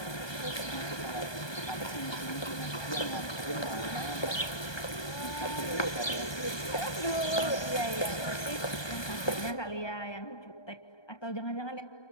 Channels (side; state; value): right; late; 1.2 ms